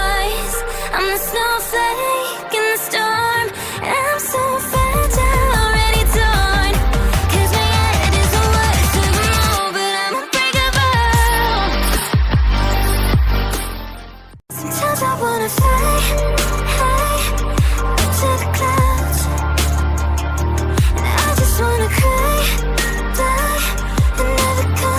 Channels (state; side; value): identical; both; correlation 1.00